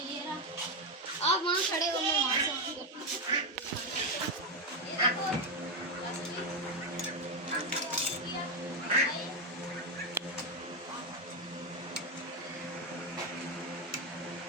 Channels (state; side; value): normal; both; correlation 0.07